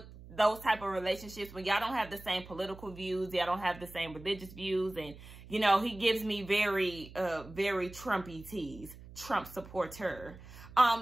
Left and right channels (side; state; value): right; noise; hum, 17 dB below the sound